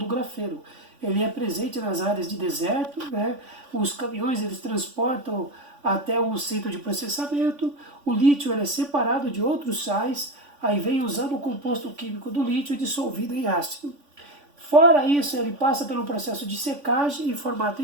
grafeno. Ele é presente nas áreas de deserto, né? Os caminhões eles transportam até um centro de processamento. O lítio ele é separado de outros sais, aí vem usando o composto químico do lítio dissolvido em ácido. Fora isso, ele passa pelo processo de secagem em formato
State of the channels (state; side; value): late; left; 3.5 ms